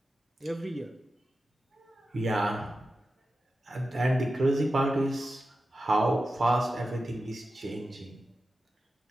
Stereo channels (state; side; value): normal; both; correlation 0.92